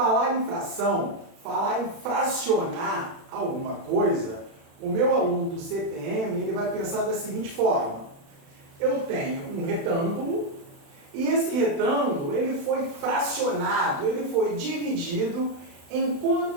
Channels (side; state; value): left; late; 36 ms